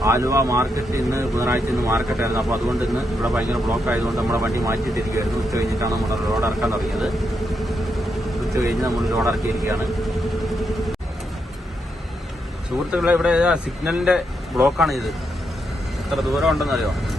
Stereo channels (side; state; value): both; normal; correlation 0.81